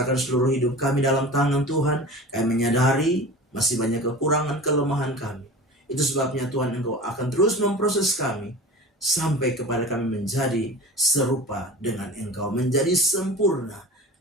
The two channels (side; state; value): both; normal; correlation 0.36